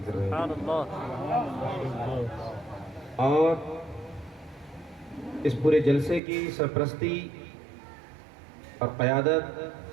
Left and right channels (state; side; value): drops out; left; at 6.2 s